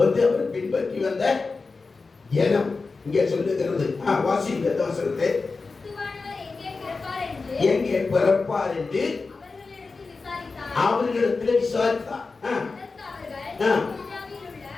அவர் பின்பற்றி வந்த ஜனம். இங்கே சொல்லுகிறது, வாசிங்க வசனத்தை. எங்கே பிறப்பார் என்று அவர்களிடத்தில் விசாரித்தார்.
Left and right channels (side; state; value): right; quieter; 4.1 dB